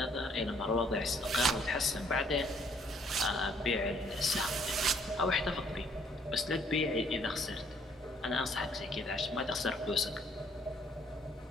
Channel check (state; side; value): normal; both; correlation 0.64